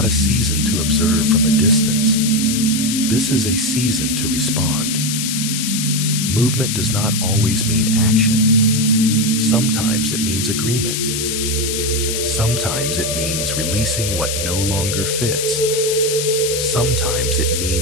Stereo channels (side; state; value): left; noise; hiss, 2 dB below the sound